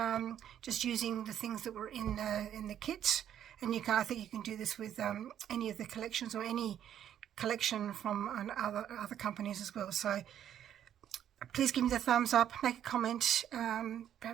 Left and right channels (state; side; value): quieter; left; 10.2 dB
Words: just using the things that were in the kit. And I think you can do this with any of the collections or any collection from other companies as well. So please give me the thumbs up, make a comment.